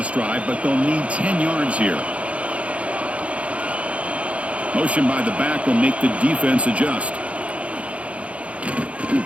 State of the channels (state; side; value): late; left; 0.063 ms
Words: drive, but they'll need 10 yards here. Motion by the back will make the defense adjust.